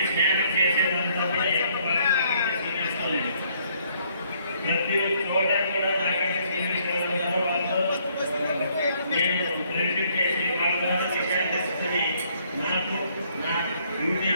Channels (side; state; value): both; inverted; correlation -0.67